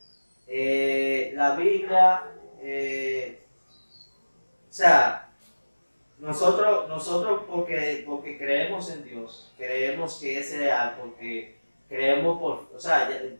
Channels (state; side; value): inverted; both; correlation -1.00